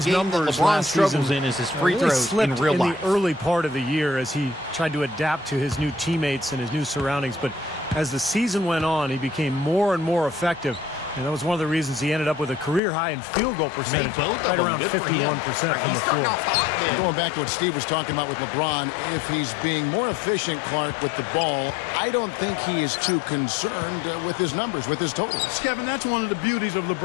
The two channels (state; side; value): drops out; right; at 12.8 s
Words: the game that numbers LeBron last struggles season in is his free really throws slipped in real life. the early part of the year as he tried to adapt to his new teammates and his new surroundings. But as the season went on, he became more and more effective. And that was one of the reasons he ended up with a career high in field goal percentage, both of right them. around Good for him. 51% Right, from he's the starting floor. off hot then. Going back to what Steve was talking about with LeBron, if he's being more efficient, Clark, with the ball, I don't think he is too concerned with his numbers, with his totals. Kevin, that's one of the beauties of